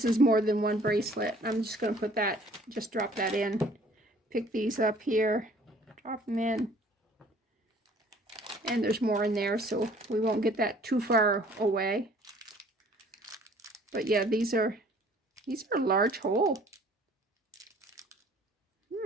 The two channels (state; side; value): normal; both; correlation 0.55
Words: is more than one bracelet. I'm just going to put that, just drop that in. Pick these up here, drop them in. And there's more in there, so we won't get that too far away. But yeah, these are a large hole.